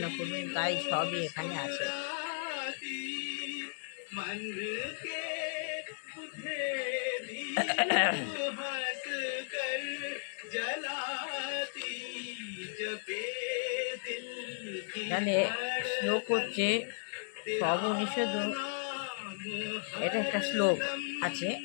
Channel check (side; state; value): right; silent; digital silence